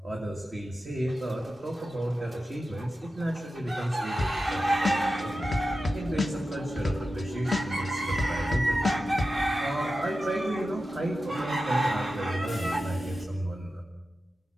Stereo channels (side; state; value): both; normal; correlation 0.92